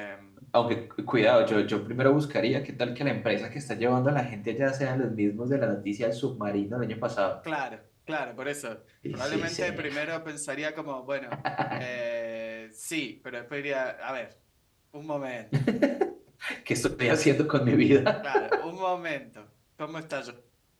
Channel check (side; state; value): both; identical; correlation 1.00